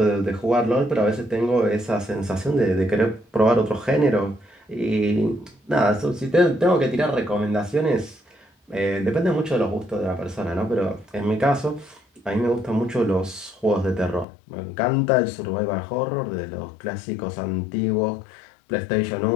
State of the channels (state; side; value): drops out; right; at 14.2 s